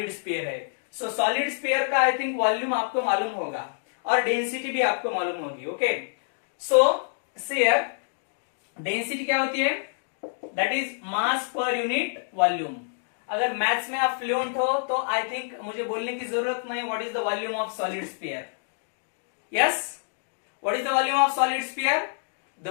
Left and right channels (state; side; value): silent; right; digital silence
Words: स्फीयर है। सो सॉलिड स्फीयर का आई थिंक वॉल्यूम आपको मालूम होगा और डेंसिटी भी आपको मालूम होगी। ओके, सो हियर डेंसिटी क्या होती है, that is mass per unit volume. अगर मैथ्स में आप फ्लुएंट हो तो आई थिंक मुझे बोलने की जरूरत नहीं, what is the volume of solid sphere. Yes, what is the volume of solid sphere, the